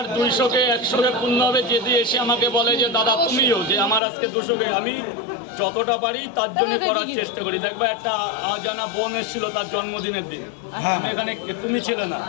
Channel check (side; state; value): right; drops out; at 4.0 s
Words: 200-কে 100-কে পূর্ণ হবে, যদি এসে আমাকে বলে যে দাদা তুমিও, যে আমার আজকে 200-কে, আমি যতটা পারি তার জন্য করার চেষ্টা করি। দেখবা একটা অজানা বোন এসেছিল তার জন্মদিনের দিন, আমি এখানে, তুমি ছিলে না,